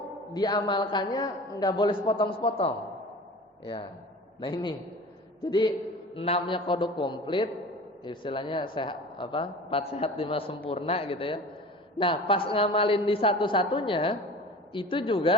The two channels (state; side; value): normal; both; correlation 0.39